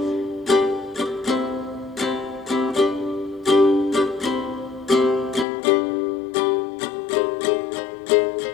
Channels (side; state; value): right; drops out; at 5.5 s